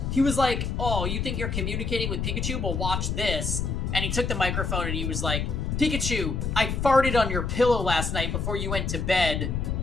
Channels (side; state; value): left; noise; rumble, 1 dB below the sound